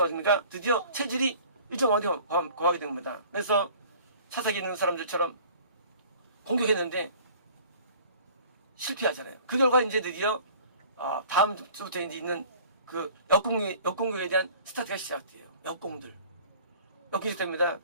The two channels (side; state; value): both; inverted; correlation -0.48